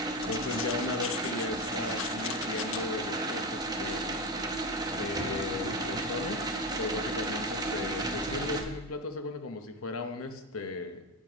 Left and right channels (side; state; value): both; normal; correlation 0.16